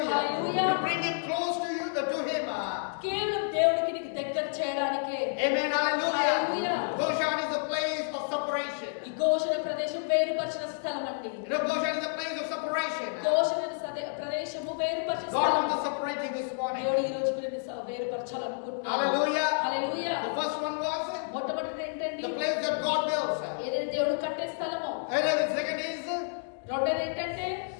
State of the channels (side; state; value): right; silent; digital silence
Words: Hallelujah. To bring him close to you, to him. కేవలం దేవుడికి నీకు దగ్గర చేయడానికే. Amen. Hallelujah. Hallelujah. Goshen is a place of separation. ఈ గోషణ ప్రదేశం వేరుపరిచిన స్థలం అండి. You know, Goshen is a place of separation. గోషణ ప్రదేశము వేరుపరిచిన God స్థలం. wants to separate you this morning. దేవుడు ఈ రోజు కూడా నిన్ను వేరుపరచాలనుకుంటున్నాడు. Hallelujah. హల్లెలూయా. The first one was మొట్టమొదటిది ఏంటండి? the place that God builds. ఏదైతే దేవుడు కట్టే స్థలమో. And then the second is రెండోది ఏంటంటే